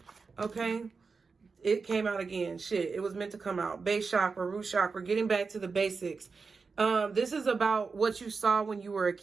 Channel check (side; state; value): left; quieter; 4.7 dB